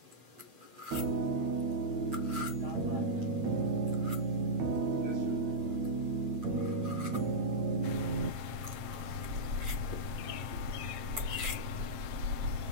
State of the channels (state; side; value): late; left; 8.1 ms